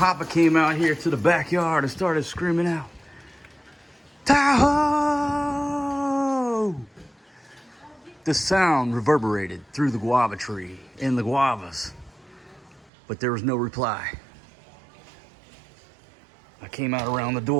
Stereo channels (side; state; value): left; drops out; at 12.9 s